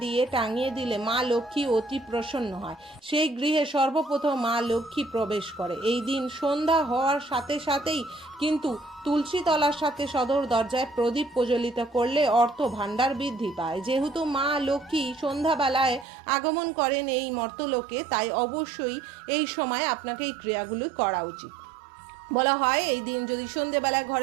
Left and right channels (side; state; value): left; drops out; at 16.1 s